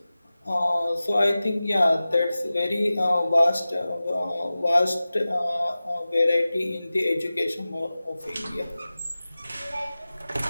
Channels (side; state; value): both; inverted; correlation -0.96